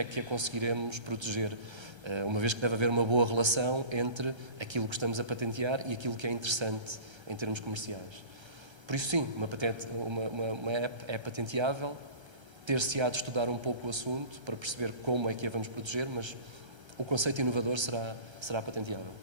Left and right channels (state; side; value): late; left; 1.3 ms